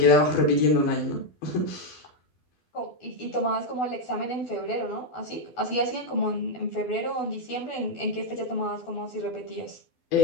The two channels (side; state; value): right; late; 12 ms